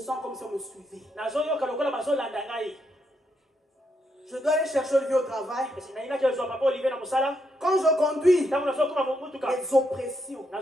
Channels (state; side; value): normal; both; correlation 0.79